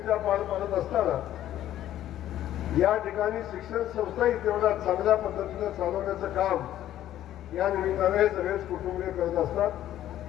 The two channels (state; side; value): quieter; right; 12.4 dB